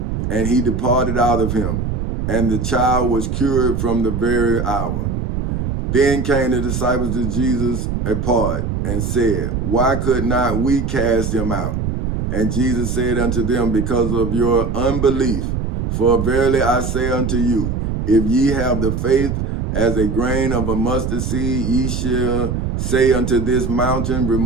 and he departed out of him. And the child was cured from the very hour. Then came the disciples to Jesus apart, and said, Why could not we cast him out? And Jesus said unto them, Because of your unbelief. For verily I say unto you, if ye have the faith as a grain of a mustard seed, ye shall say unto this mountain,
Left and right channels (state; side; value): noise; right; rumble, 2 dB below the sound